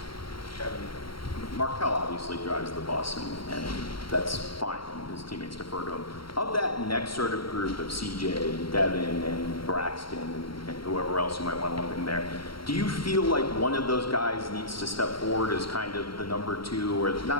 Markel obviously drives the bus, and that's fine. His teammates defer to him. Of that next sort of group of CJ and Devin and Braxton and whoever else you might want to lump in there, do you feel like one of those guys needs to step forward as kind of the number 2, or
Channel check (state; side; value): late; right; 0.74 ms